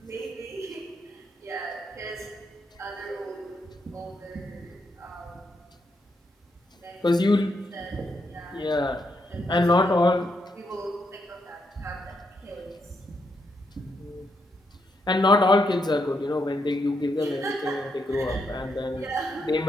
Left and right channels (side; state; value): both; normal; correlation 0.79